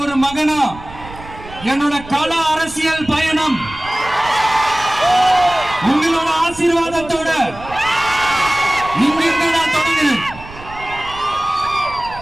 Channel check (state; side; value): noise; right; rumble, 16 dB below the sound